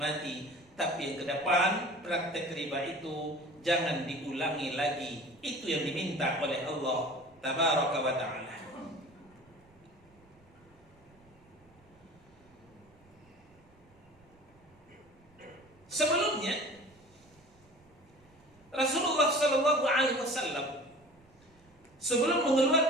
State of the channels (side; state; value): right; noise; rumble, 29 dB below the sound